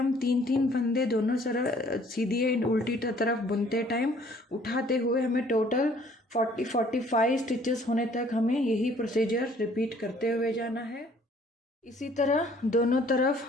3-3 फंदे दोनों तरफ सीधी एंड उल्टी तरफ बुनते टाइम उठाते हुए हमें टोटल 40-45 स्टिचेस होने तक हमें यही प्रोसीजर रिपीट करते हुए जाना है। इसी तरह दोनों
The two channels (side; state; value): both; normal; correlation 0.58